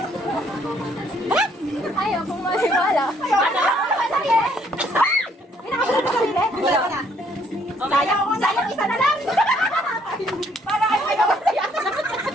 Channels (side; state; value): both; normal; correlation 0.66